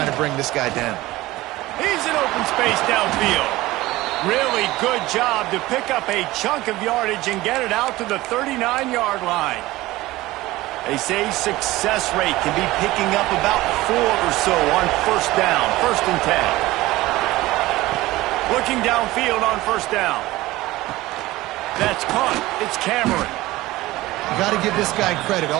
to bring this guy down. He's in open space downfield. Really good job to pick up a chunk of yardage and get it out to the 39-yard line. They say success rate can be picking up about 4 or so on first down, 1st and 10. Looking downfield on first down. That's caught. It's Cameron. You got to give this guy credit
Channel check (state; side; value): quieter; left; 18.2 dB